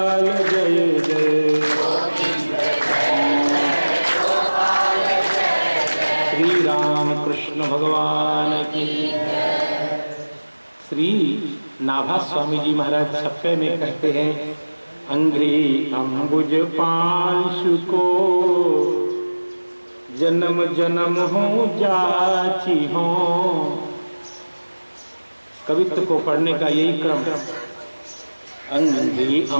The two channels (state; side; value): inverted; both; correlation -1.00